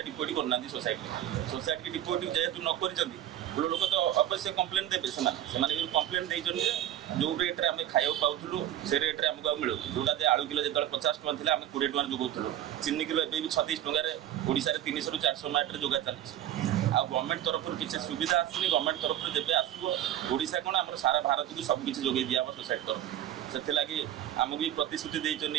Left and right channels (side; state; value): left; quieter; 11.7 dB